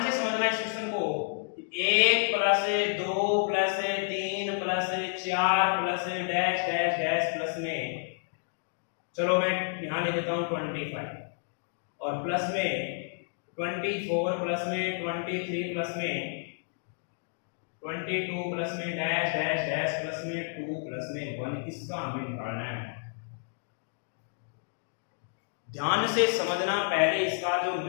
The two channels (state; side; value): silent; right; digital silence